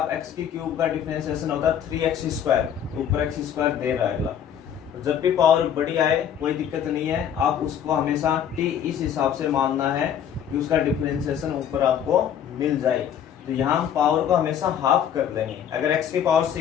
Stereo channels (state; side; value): quieter; right; 9.1 dB